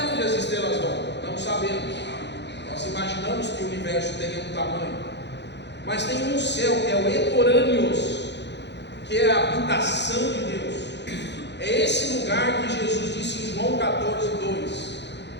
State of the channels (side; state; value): right; late; 0.50 ms